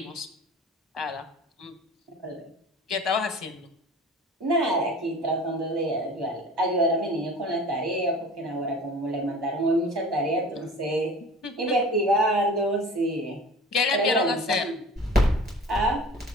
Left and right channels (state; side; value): normal; both; correlation 0.41